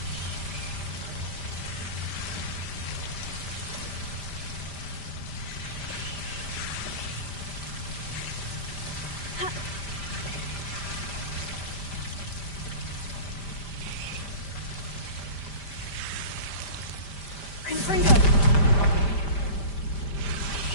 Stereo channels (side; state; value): right; late; 5.0 ms